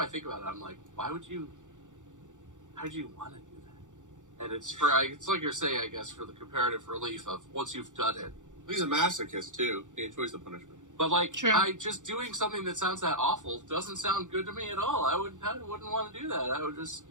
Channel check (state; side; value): late; left; 0.86 ms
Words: think about it, I'm like, why'd you want to do that? And it's like you're saying, I guess, for the comparative relief of once you've done it. He's a masochist too. He enjoys the punishment. But like, just doing something that sounds that awful doesn't sound good to me at all. I wouldn't want to do that. I would just,